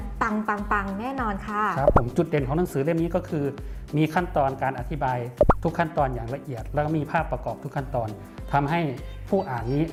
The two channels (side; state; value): both; identical; correlation 1.00